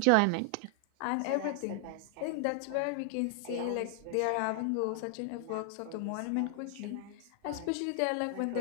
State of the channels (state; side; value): different; both; correlation 0.00